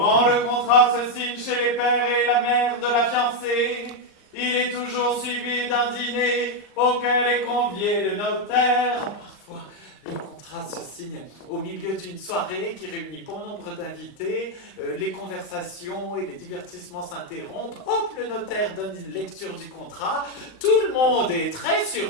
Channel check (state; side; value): late; right; 39 ms